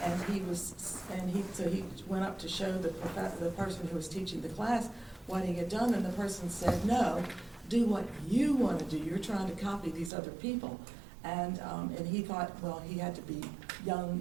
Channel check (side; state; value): left; drops out; at 10.1 s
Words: he was. So he went up to show the person who was teaching the class what he had done, and the person said, no, do what you want to do. You're trying to copy these other people. And he thought, well, he had to be young